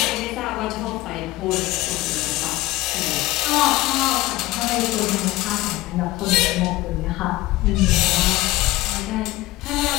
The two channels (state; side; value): quieter; right; 18.5 dB